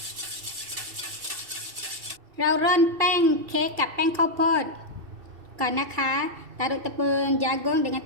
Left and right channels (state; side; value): late; left; 2.7 ms